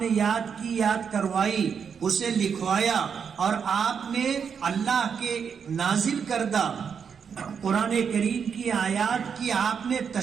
یاد کروائی، اسے لکھوایا، اور آپ نے اللہ کے نازل کردہ قرآن کریم کی آیات کی آپ نے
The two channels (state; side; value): quieter; left; 6.8 dB